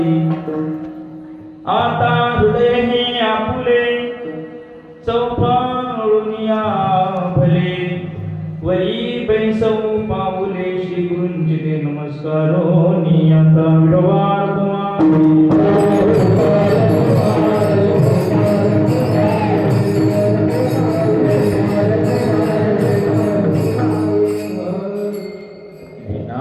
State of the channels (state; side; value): identical; both; correlation 1.00